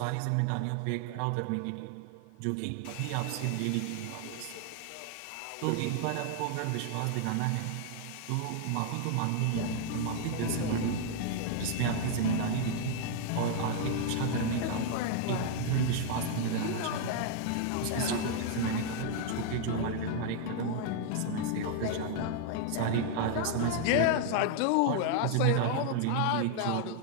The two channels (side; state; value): both; different; correlation 0.00